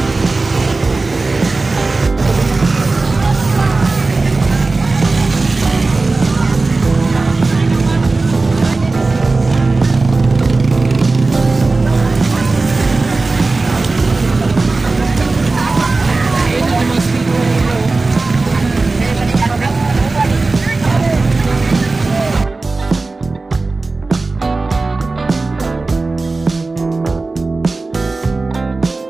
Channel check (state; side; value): quieter; left; 3.5 dB